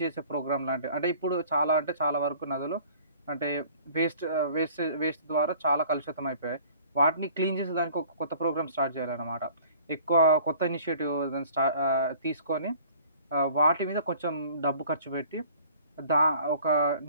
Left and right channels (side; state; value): both; inverted; correlation -0.51